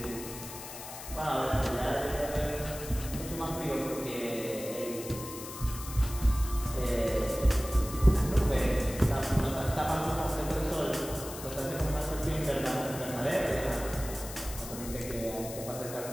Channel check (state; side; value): noise; left; hiss, 11 dB below the sound